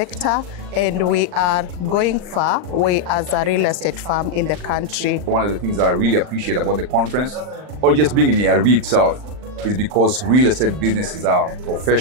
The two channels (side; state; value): left; late; 39 ms